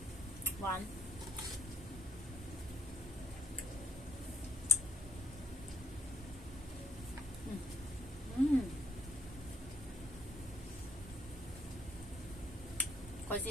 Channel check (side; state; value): both; normal; correlation 0.65